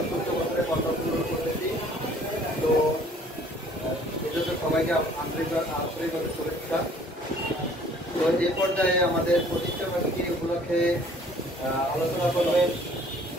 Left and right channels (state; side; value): normal; both; correlation 0.56